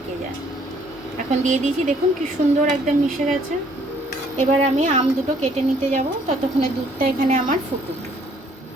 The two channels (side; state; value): both; normal; correlation 0.63